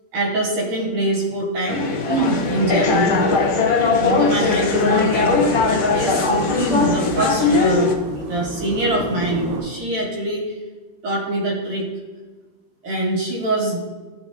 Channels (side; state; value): left; late; 13 ms